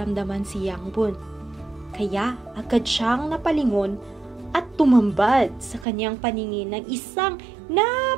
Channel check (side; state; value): left; drops out; at 5.9 s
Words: si Yang Bun. Kaya agad siyang napalingon at tumambad sa kanyang paningin ng isang